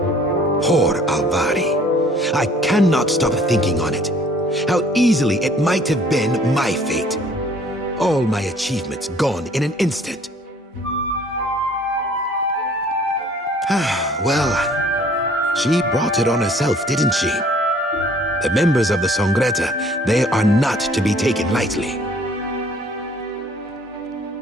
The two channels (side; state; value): both; normal; correlation 0.56